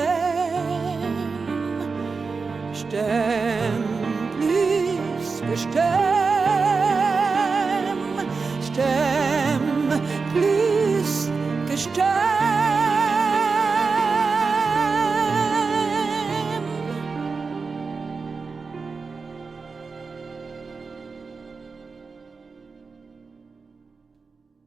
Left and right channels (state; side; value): quieter; left; 4.6 dB